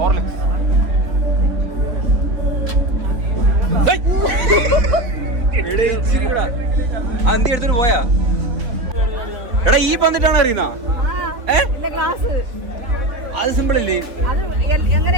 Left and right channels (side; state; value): left; late; 3.5 ms